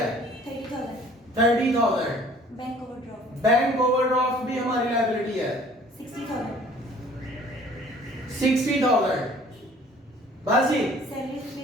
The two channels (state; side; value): normal; both; correlation 0.53